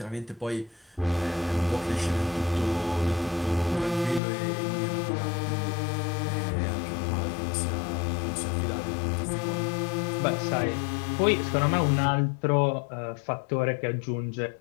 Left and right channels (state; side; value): drops out; right; at 4.2 s